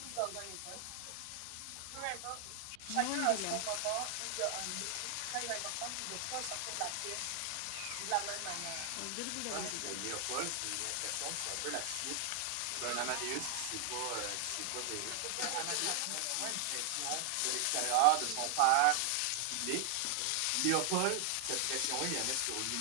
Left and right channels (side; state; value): both; different; correlation 0.00